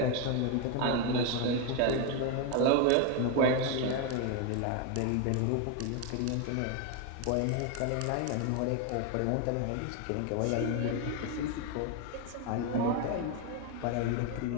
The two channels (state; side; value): different; both; correlation 0.02